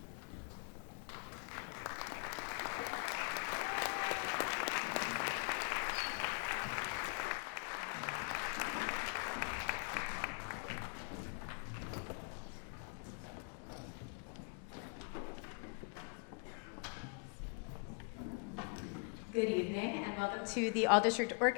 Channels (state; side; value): quieter; right; 38.8 dB